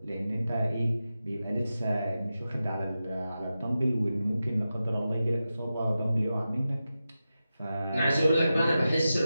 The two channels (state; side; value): inverted; both; correlation -0.92